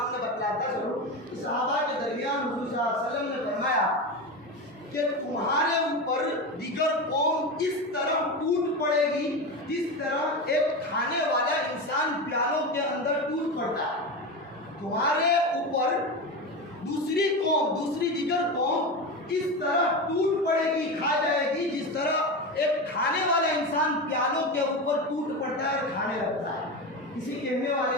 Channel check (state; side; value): normal; both; correlation 0.21